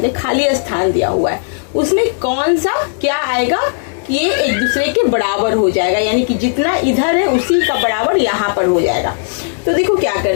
खाली स्थान दिया हुआ है, उसमें कौन सा क्या आएगा कि ये एक दूसरे के बराबर हो जाएगा, यानी कि जितना इधर है उसी का बराबर यहाँ पर हो जाएगा। तो देखो क्या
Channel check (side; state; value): right; silent; digital silence